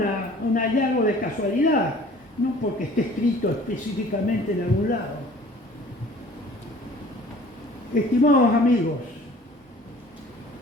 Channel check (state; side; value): normal; both; correlation 0.50